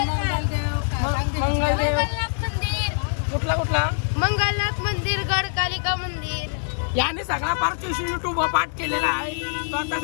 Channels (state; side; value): silent; right; 62 dB below the other